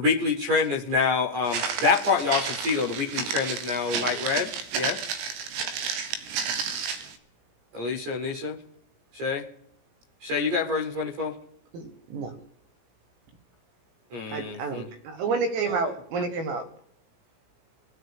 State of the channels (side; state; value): left; late; 17 ms